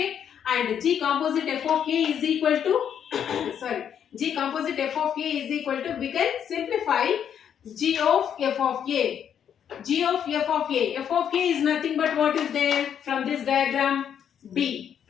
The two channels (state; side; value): quieter; right; 8.7 dB